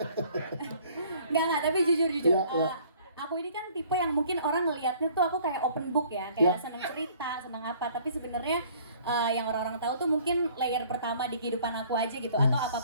Enggak, tapi jujur. Aku ini kan tipe yang mungkin orang ngelihatnya tuh aku kayak open book ya, kayak seneng cerita, seneng apa. Tapi sebenarnya yang orang-orang tahu tuh mungkin layer pertama di kehidupan aku aja gitu, atau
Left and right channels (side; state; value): both; inverted; correlation -0.56